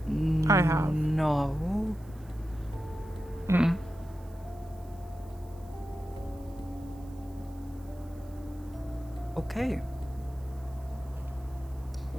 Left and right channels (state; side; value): noise; right; hiss, 27 dB below the sound